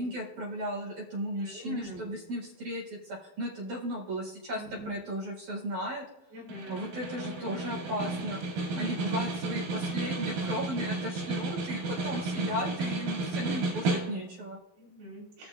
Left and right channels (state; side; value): late; left; 12 ms